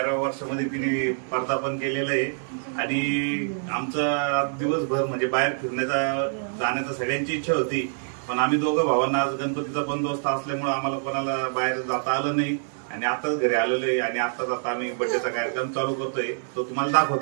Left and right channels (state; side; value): silent; left; 61 dB below the other